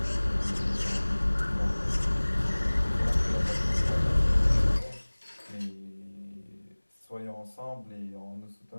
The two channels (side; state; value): both; inverted; correlation -1.00